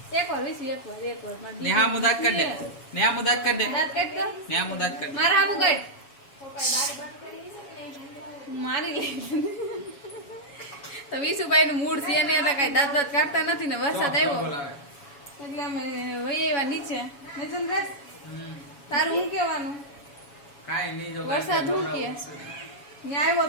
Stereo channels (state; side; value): late; right; 7.1 ms